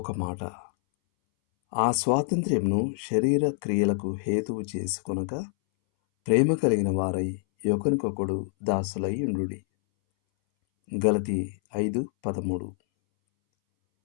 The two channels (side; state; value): right; silent; 60 dB below the other